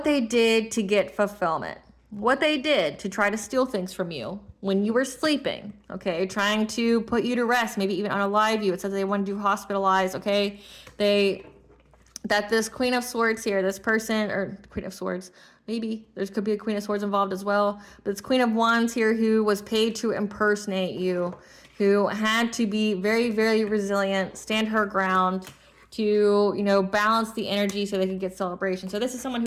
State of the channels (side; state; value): both; identical; correlation 1.00